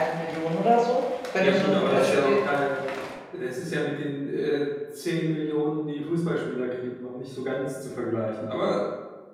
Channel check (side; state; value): both; identical; correlation 1.00